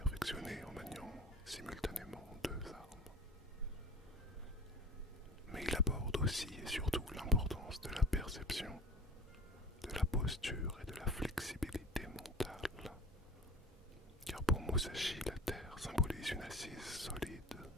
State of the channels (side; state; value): both; normal; correlation 0.38